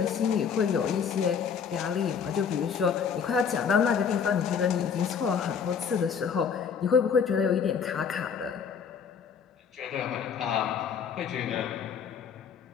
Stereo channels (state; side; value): quieter; right; 6.9 dB